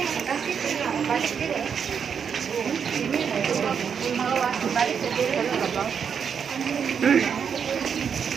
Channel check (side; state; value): left; quieter; 7.0 dB